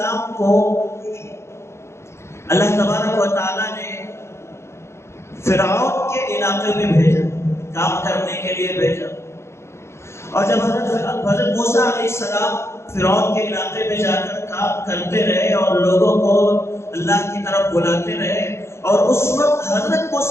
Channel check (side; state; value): right; late; 0.13 ms